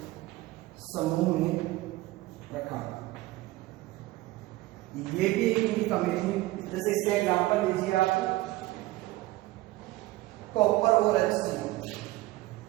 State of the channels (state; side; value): quieter; left; 18.3 dB